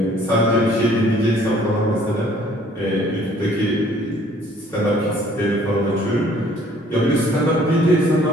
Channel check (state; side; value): normal; both; correlation 0.58